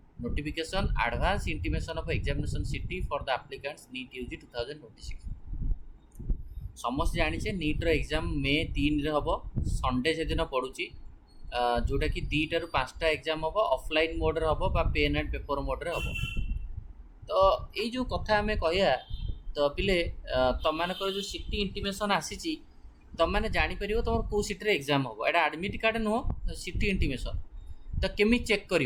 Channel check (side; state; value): both; identical; correlation 1.00